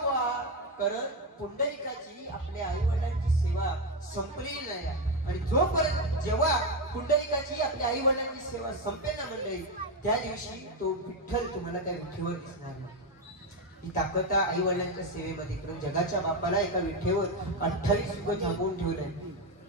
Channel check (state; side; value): normal; both; correlation 0.10